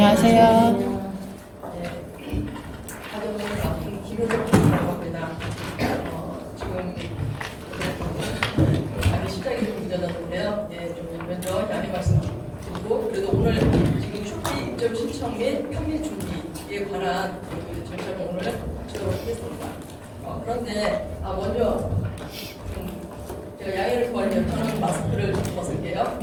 지금 시작이 좀 늦어졌는데요. 좀 먼저 양해 말씀드리고, 그래도 오늘 지금 쇼피 입점 신청 및 편입 준비에 관한 절차를 오늘 하도록 하겠습니다. 그런데 먼저 제가 양해를 구하려면 저는 마스크를 벗을게요.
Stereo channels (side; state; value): both; identical; correlation 1.00